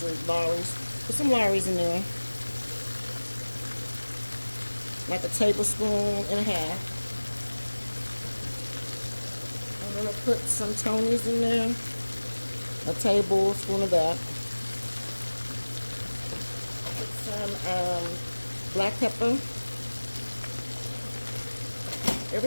Lawry's. Put some Lawry's in there. Like a tablespoon and a half. I'm gonna put some Tony's in there. A tablespoon of that. Put some black pepper.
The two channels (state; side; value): inverted; both; correlation -1.00